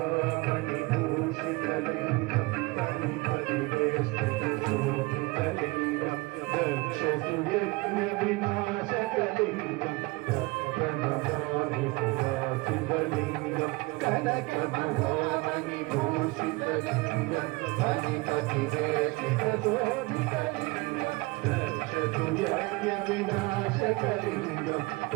వినాశకలింగం ప్రణమామి శివలింగం కనక మహామణి భూషితలింగం హరిపతి శోభితలింగం రక్షతు యజ్ఞ వినాశకలింగం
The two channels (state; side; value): quieter; left; 23.7 dB